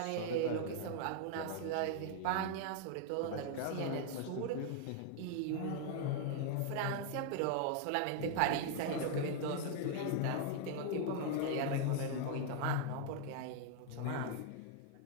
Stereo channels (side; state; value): both; different; correlation 0.00